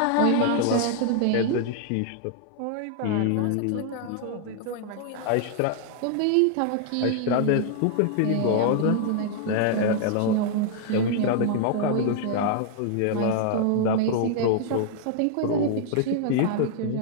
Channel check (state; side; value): different; both; correlation 0.00